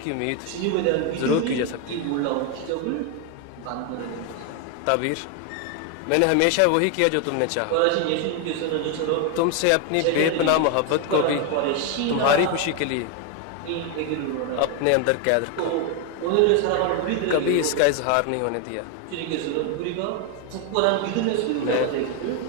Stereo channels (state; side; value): different; both; correlation 0.01